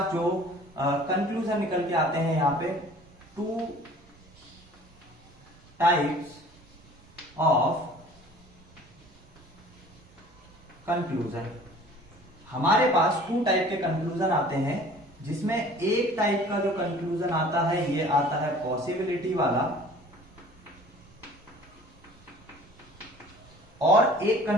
जो कंक्लूजन निकल के आते हैं यहाँ पे, 2 टाइप्स ऑफ कंक्लूजन। हमारे पास 2 टाइप के कंक्लूजन आते हैं, जिसमें एक टाइप का जो कंक्लूजन आता है ये आता है पॉसिबिलिटी वाला, और एक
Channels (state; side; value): normal; both; correlation 0.48